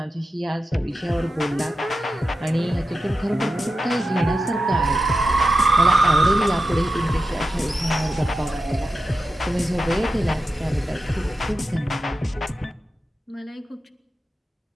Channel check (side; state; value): both; normal; correlation 0.90